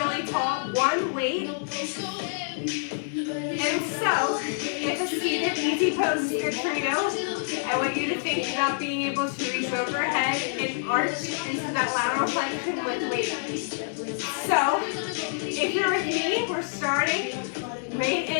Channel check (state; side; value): silent; right; 60 dB below the other